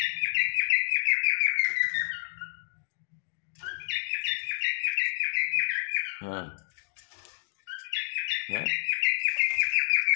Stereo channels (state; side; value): silent; right; digital silence